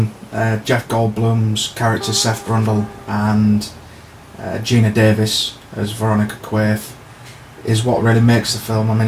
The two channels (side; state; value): both; identical; correlation 1.00